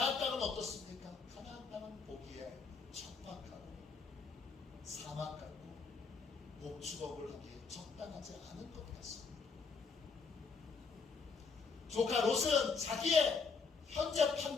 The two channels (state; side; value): quieter; right; 4.9 dB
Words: 땅은 어떻습니까? 가나안 땅은 보기에 척박하고 사막 같고 목축업을 하기에 적당하지 않은 것 같습니다. 조카 롯은 자기의 현재